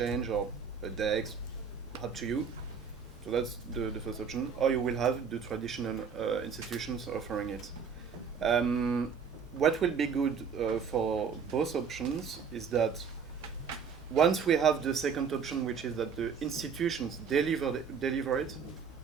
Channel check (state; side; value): quieter; left; 6.3 dB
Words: or a DEX, up to you. So that's the first option. Or you will have the traditional institutions offering it. What will be good for both options is that once we have the second option, which is that the institutions deliver it,